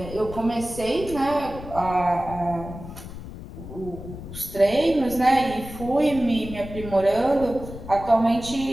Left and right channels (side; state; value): left; noise; rumble, 12 dB below the sound